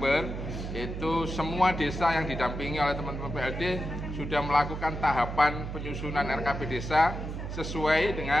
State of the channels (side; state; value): right; noise; hum, 6 dB below the sound